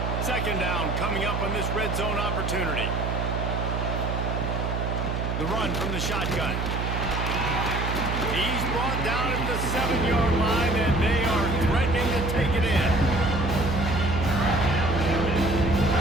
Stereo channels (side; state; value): right; noise; hum, 1 dB below the sound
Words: 2nd down coming up on this red zone opportunity. The run from the shotgun. He's brought down at the 7-yard line, and they are threatening to take it in.